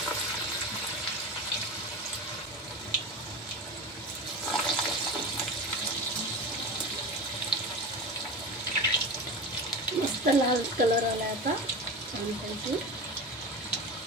मस्त लाल कलर आला आता छानपैकी।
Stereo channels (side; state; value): both; normal; correlation 0.27